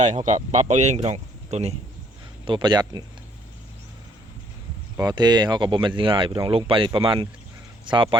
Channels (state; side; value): normal; both; correlation 0.65